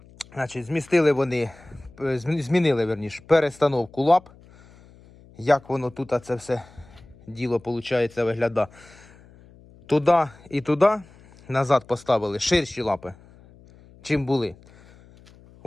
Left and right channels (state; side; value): noise; left; hum, 25 dB below the sound